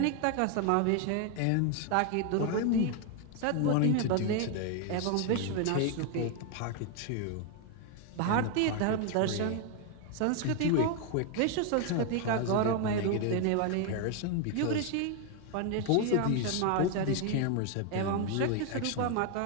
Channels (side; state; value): both; different; correlation 0.01